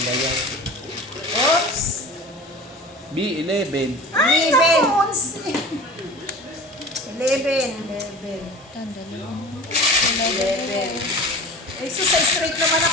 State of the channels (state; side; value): normal; both; correlation 0.37